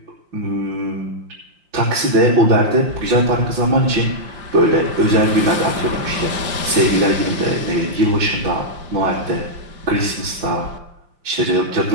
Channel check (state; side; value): late; left; 5.7 ms